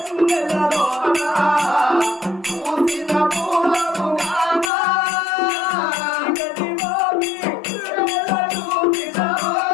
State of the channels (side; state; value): right; drops out; at 4.7 s